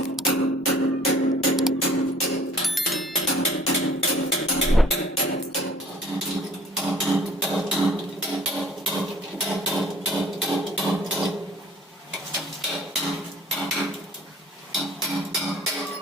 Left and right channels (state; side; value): normal; both; correlation 0.53